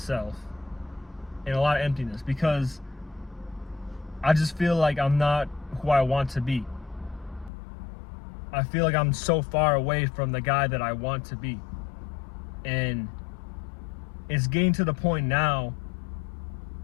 and a lot of emptiness, because I just feel like I'm not who I want to be. I feel like I'm so far away from the guy that I want to be. And it's getting to the point now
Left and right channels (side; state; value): right; drops out; at 7.5 s